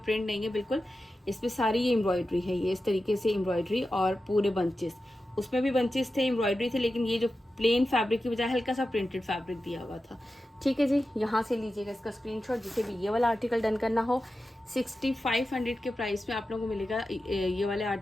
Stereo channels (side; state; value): both; normal; correlation 0.92